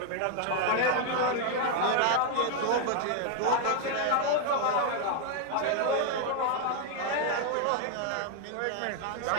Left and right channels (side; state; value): both; different; correlation 0.00